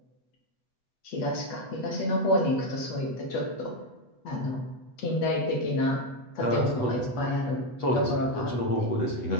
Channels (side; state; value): right; late; 8.3 ms